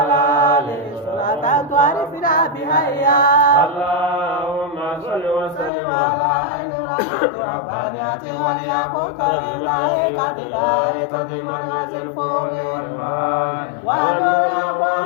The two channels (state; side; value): drops out; right; at 5.7 s